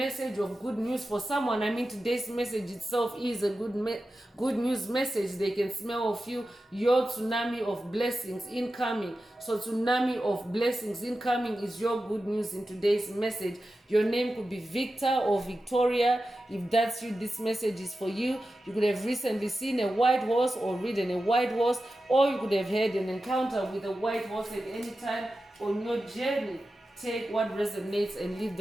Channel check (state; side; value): normal; both; correlation 0.92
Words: of good news for someone. I mean, today's message itself is a good news message. They can smell of you, your tsunami of blessings incoming. So tsunami of blessings incoming is your good news in today's message. Your name could be Victor or Victoria. If that's you, this message is for you. You could have recently seen a white horse or ridden a white horse, or you could have had an encounter with a white horse at any time on your journey. Take what resonates and leave